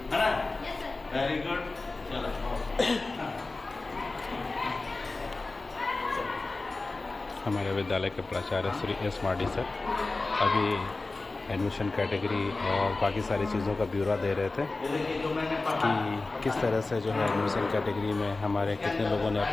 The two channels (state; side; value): quieter; right; 3.4 dB